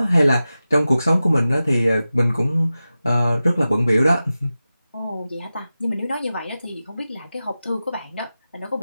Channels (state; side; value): inverted; both; correlation -0.94